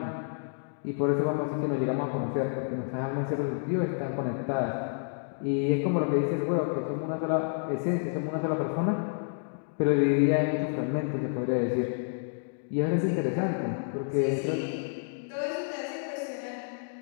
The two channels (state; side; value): silent; right; digital silence